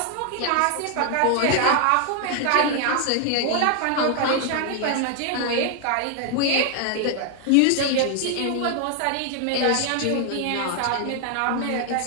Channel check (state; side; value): different; both; correlation 0.00